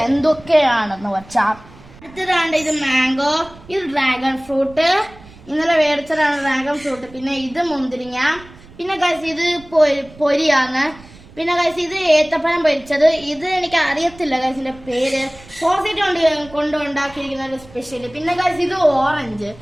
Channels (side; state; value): right; noise; rumble, 22 dB below the sound